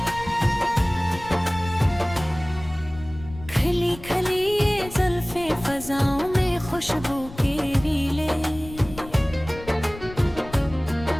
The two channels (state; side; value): noise; left; rumble, 15 dB below the sound